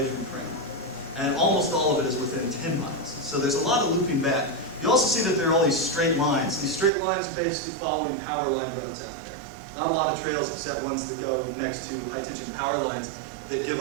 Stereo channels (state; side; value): drops out; left; at 6.9 s